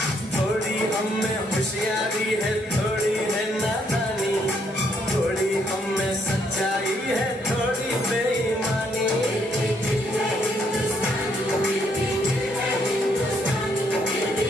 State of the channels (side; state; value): both; normal; correlation 0.71